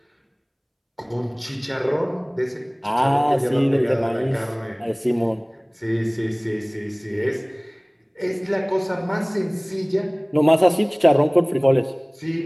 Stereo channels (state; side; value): identical; both; correlation 1.00